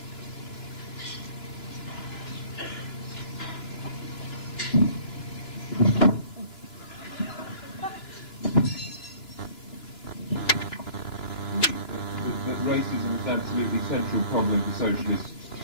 Racism is absolutely central problem for socialists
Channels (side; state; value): right; late; 2.9 ms